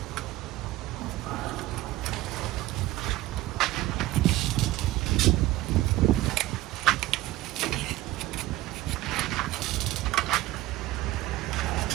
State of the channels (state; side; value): quieter; left; 16.8 dB